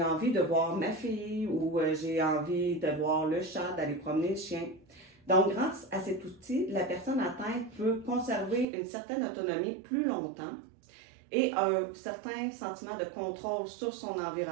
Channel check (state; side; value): drops out; left; at 8.7 s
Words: envie de voir ma fille ou j'ai envie de voir le chat, d'aller promener le chien. Donc, grâce à cet outil, la personne atteinte peut conserver une certaine autonomie plus longtemps et un certain sentiment de contrôle sur son